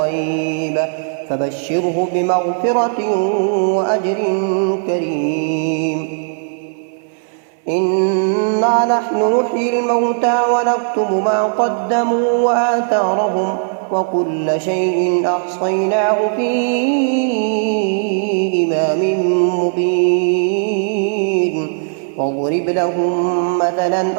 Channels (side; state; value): left; silent; 63 dB below the other